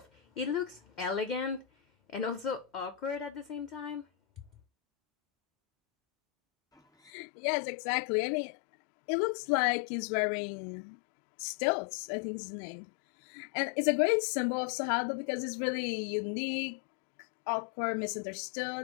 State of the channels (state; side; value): drops out; right; at 7.1 s